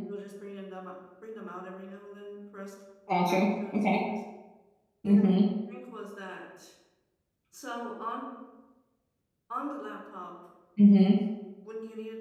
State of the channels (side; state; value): both; identical; correlation 1.00